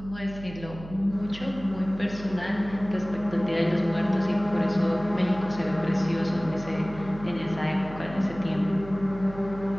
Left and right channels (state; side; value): noise; right; hum, 14 dB below the sound